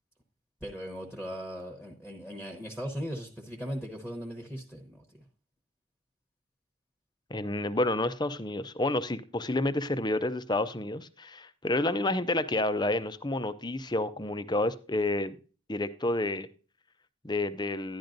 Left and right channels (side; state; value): both; normal; correlation 0.52